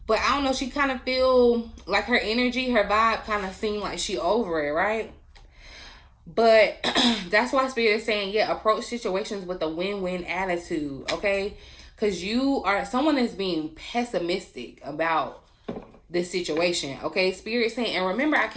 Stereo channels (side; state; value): both; identical; correlation 1.00